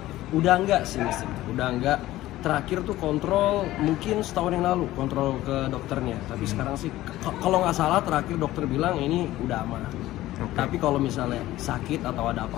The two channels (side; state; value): right; quieter; 15.8 dB